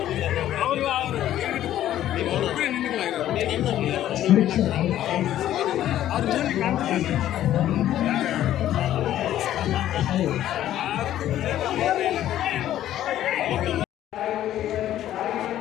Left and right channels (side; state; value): right; quieter; 12.4 dB